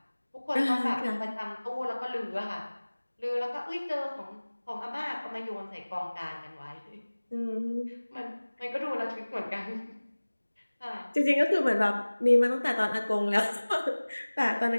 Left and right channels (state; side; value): inverted; both; correlation -1.00